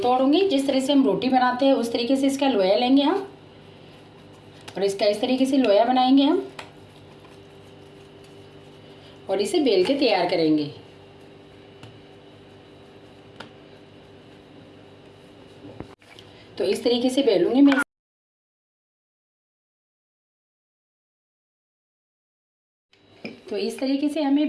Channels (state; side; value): identical; both; correlation 1.00